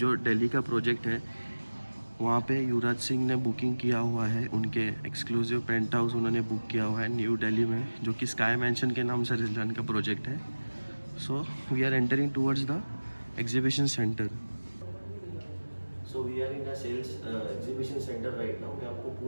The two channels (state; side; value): inverted; both; correlation -1.00